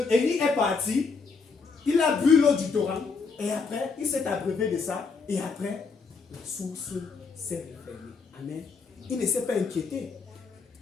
Élie est parti. Il a bu l'eau du torrent. Et après, il s'est abreuvé de ça. Et après, la source s'est refermée. Amen. Il ne s'est pas inquiété.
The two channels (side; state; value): right; quieter; 4.8 dB